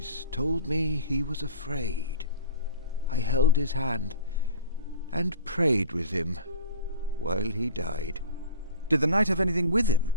told me he was afraid. I held his hand and prayed with him while he died. Did the knight have anything with him?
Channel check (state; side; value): inverted; both; correlation -0.40